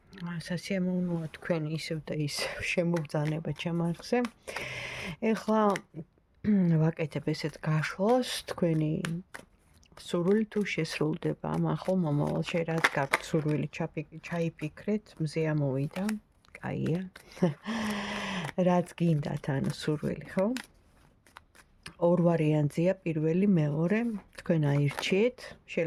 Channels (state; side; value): identical; both; correlation 1.00